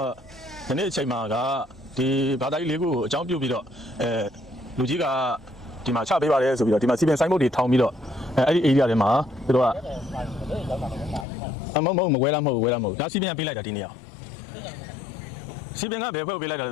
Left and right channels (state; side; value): drops out; right; at 11.2 s